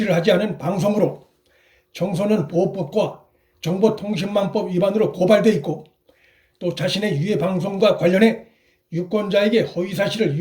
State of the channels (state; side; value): identical; both; correlation 1.00